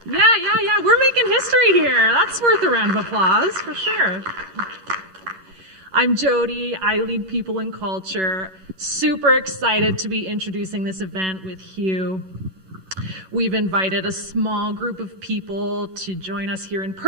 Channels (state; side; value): late; left; 11 ms